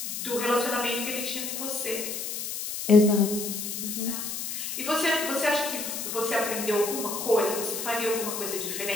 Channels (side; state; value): left; noise; hiss, 5 dB below the sound